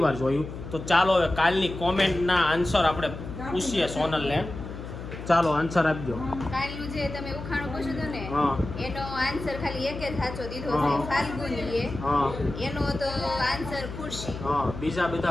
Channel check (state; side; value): noise; left; hum, 10 dB below the sound